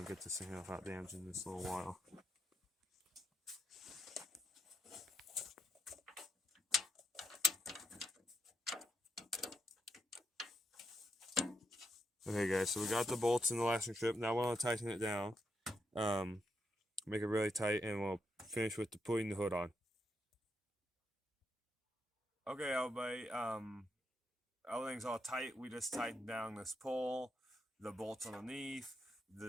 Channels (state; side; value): normal; both; correlation 0.80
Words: to get this thing without damaging this little while. Okay guys, so we got the bolts in the lashing strip. Now we're going to tighten it down. Make it really tight, and we'll finish with putting the hood on. Okay everybody, everything's all tight. We just tightened down this pole, the bolts underneath,